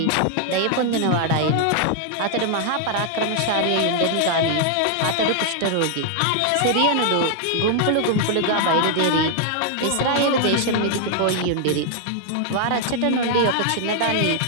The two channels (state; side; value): different; both; correlation 0.00